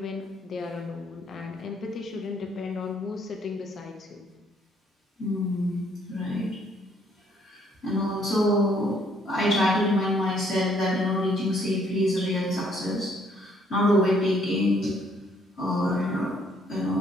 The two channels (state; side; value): normal; both; correlation 0.66